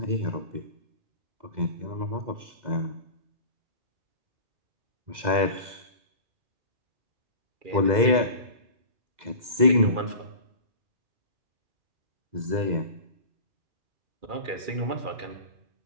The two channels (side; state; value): left; late; 2.0 ms